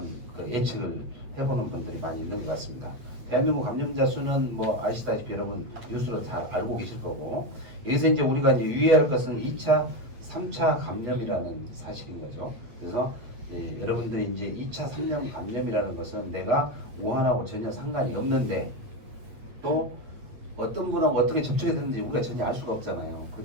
그 예측을 해보는 분들이 많이 있는 것 같습니다. 대한민국 감염자 수는 뭐 아시다시피 여러분 뉴스로 잘 알고 계실 거고 여기서 이제 우리가 이제 유의할 것은 2차, 3차 감염이라는 사실인 거죠. 그래서 여러분들이 이제 2차, 3차 감염이라는 것은 내가 우한하고 전혀 상관이 없는데 또 어떤 분하고 어떻게 접촉이 되는지 우리가 전혀 알 수가 없잖아요. 그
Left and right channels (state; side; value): late; left; 8.1 ms